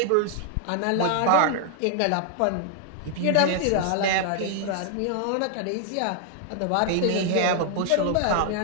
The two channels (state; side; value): different; both; correlation 0.00